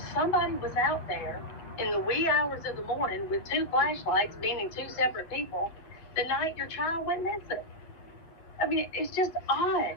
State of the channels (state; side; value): late; right; 8.8 ms